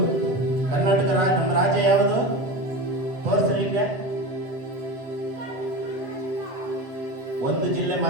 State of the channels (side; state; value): left; late; 7.6 ms